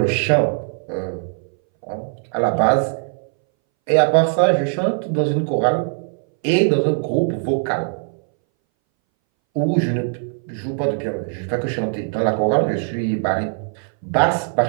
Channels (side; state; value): left; silent; 62 dB below the other